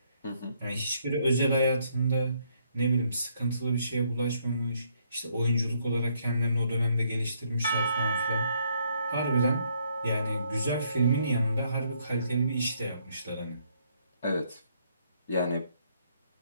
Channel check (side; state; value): both; inverted; correlation -0.71